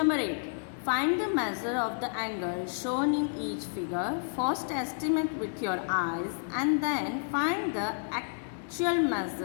8. Find the measure of the angle shown in each figure. First estimate with your eyes and then find the actual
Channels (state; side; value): silent; right; digital silence